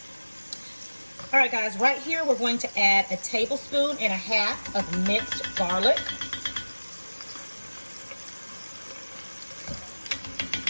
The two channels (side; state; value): both; inverted; correlation -1.00